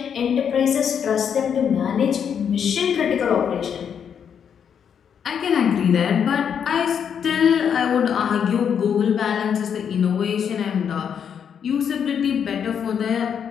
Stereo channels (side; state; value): right; quieter; 7.8 dB